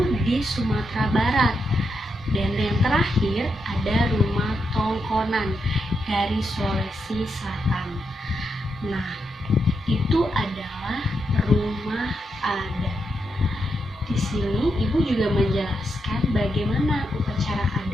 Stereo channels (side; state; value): both; normal; correlation 0.83